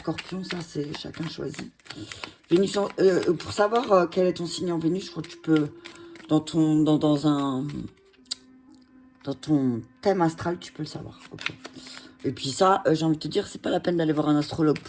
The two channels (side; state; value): both; identical; correlation 1.00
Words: ça c'est chacun choisit. Vénus pour savoir quel est ton signe en Vénus, je crois que tu peux, dans ton thème astral, tu peux le savoir. Okay. Et puis ça, j'ai envie de te dire, c'est pas la peine d'aller voir un astrologue